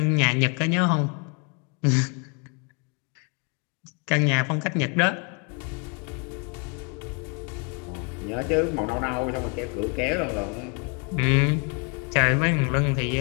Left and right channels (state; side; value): quieter; right; 33.7 dB